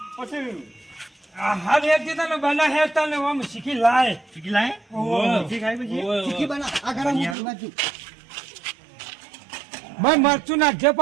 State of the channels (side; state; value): left; drops out; at 7.4 s